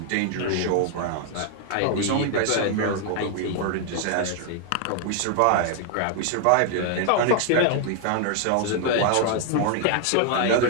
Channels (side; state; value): both; different; correlation 0.00